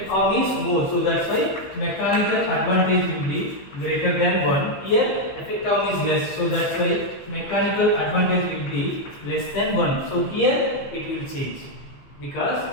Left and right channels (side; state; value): right; late; 15 ms